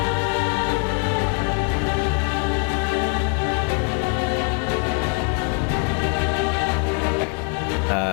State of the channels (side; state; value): right; quieter; 34.7 dB